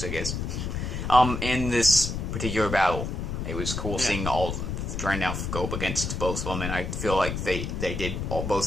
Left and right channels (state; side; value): noise; left; rumble, 3 dB below the sound